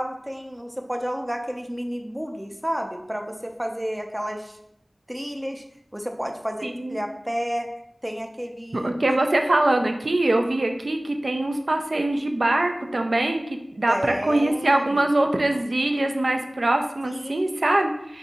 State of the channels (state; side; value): normal; both; correlation 0.98